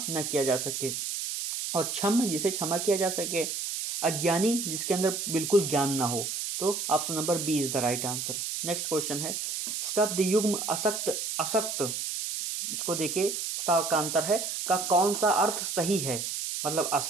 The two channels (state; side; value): noise; right; hiss, 3 dB below the sound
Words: न किया जा सके और क्षम जिसे क्षमा किया जा सके। अज्ञानी जिसके अंदर बिल्कुल ज्ञान ना हो। तो option number B is the right answer. Next question है, शब्द युग्म असक्त, असक्त, इसको देखिए, सा का अंतर है, का कौन सा अर्थ सही है? मतलब